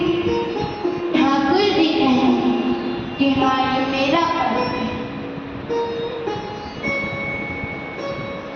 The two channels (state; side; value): identical; both; correlation 1.00